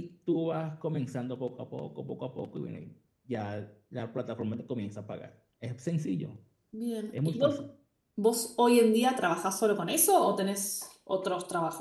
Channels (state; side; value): identical; both; correlation 1.00